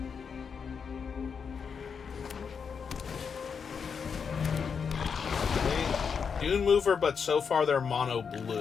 Dune Mover, but so far they're mono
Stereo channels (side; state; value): right; quieter; 6.2 dB